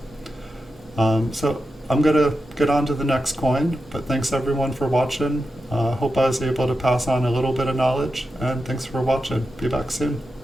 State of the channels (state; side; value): normal; both; correlation 0.90